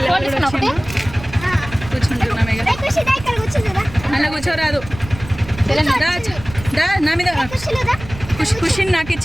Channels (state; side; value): noise; right; rumble, 14 dB below the sound